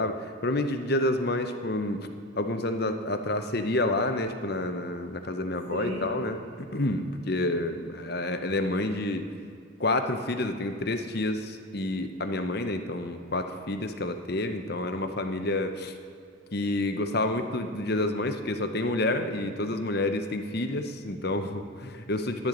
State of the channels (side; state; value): both; normal; correlation 0.24